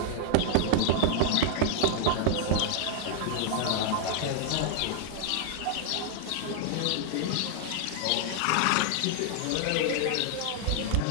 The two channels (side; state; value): both; different; correlation 0.00